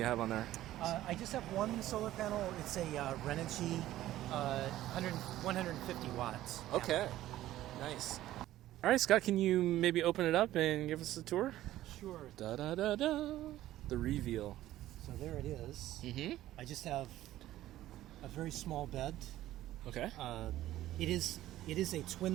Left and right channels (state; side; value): quieter; left; 14.3 dB